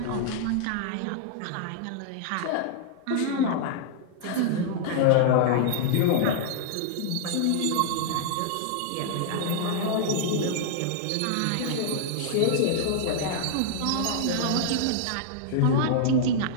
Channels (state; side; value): different; both; correlation -0.01